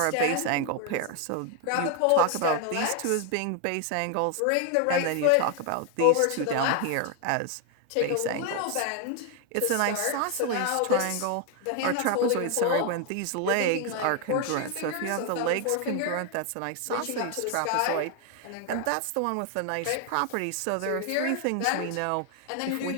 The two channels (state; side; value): different; both; correlation 0.01